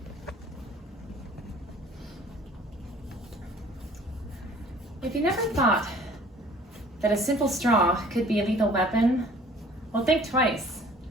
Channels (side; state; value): both; normal; correlation 0.52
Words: If you never thought that a simple straw could be a lethal weapon, well, think twice.